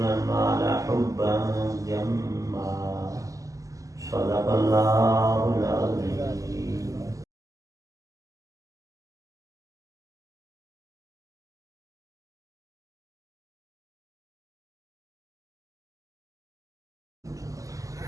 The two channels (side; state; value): left; late; 0.16 ms